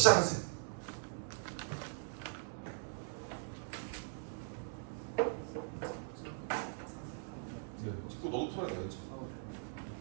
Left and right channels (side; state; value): left; silent; digital silence